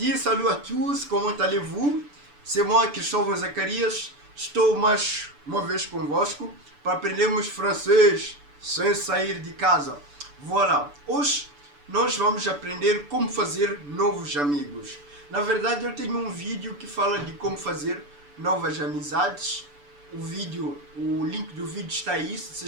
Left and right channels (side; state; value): left; late; 6.9 ms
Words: salut à tous, comment allez-vous? C'est moi, Cristóvão Zacarias, estou mais uma vez convosco para aprendermos francês sem sair de casa. Voilà, hoje nós vamos aprender como fazer novos amigos. Na verdade, eu tenho um vídeo que fala de como fazer novas amizades. O link do vídeo está aí, se